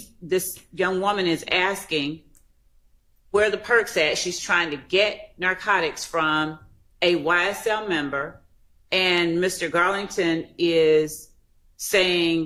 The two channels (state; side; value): identical; both; correlation 1.00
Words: this young woman is asking where the perks at. She's trying to get narcotics from a YSL member, and Mr. Garlington is